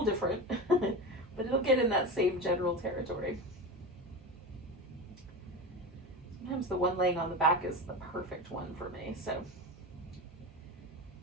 different, but it'll get in that same general territory. Sometimes the one laying on the back is the perfect one for me, so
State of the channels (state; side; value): normal; both; correlation 0.24